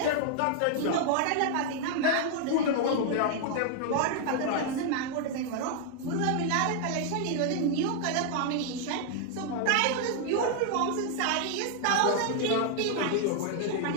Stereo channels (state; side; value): different; both; correlation 0.00